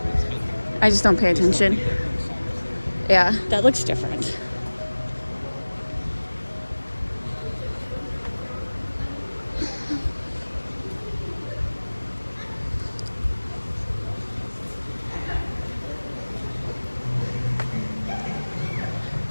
I just don't pay attention? Yeah, that looks different.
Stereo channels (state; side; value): inverted; both; correlation -1.00